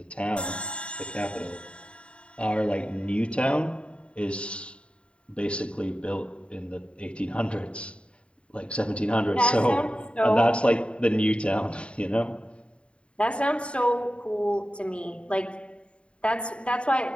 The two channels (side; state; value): right; late; 0.058 ms